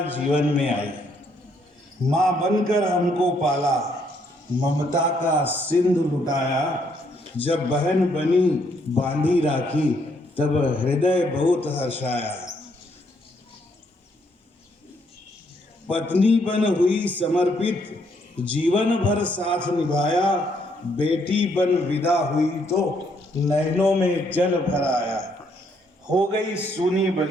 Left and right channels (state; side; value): normal; both; correlation 0.71